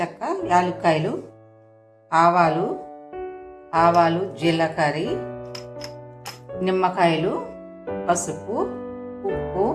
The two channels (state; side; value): identical; both; correlation 1.00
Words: యాలక్కాయలు, ఆవాలు, జీలకర్ర, నిమ్మకాయలు, పసుపు, ఉప్పు,